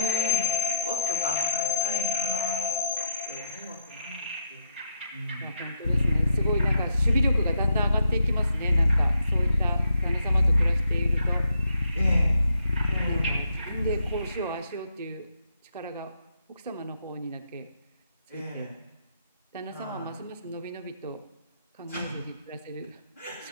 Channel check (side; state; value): both; inverted; correlation -0.76